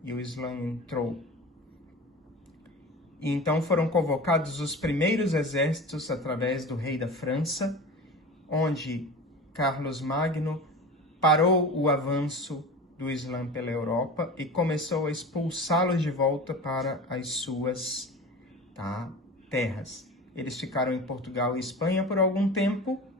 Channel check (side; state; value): both; normal; correlation 0.33